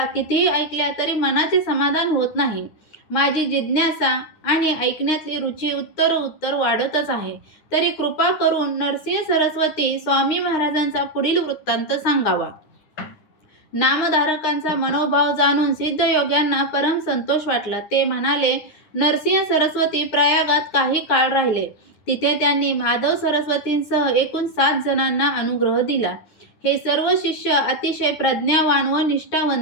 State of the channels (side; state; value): right; late; 9.7 ms